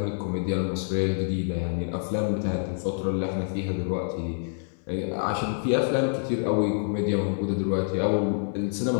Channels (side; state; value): right; silent; 60 dB below the other